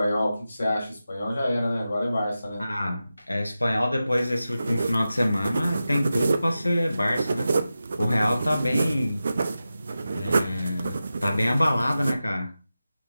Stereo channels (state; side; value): inverted; both; correlation -0.93